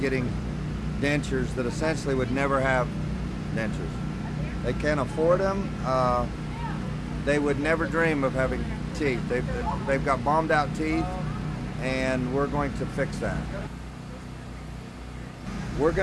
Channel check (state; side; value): identical; both; correlation 1.00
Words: dentures that essentially would never have dentures. They can't afford them. They would never dream of having teeth. They've got bombed out teeth, and we're going to fix that. We're